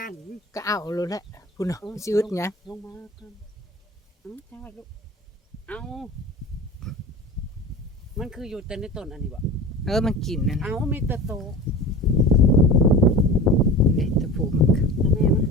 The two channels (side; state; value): both; normal; correlation 0.34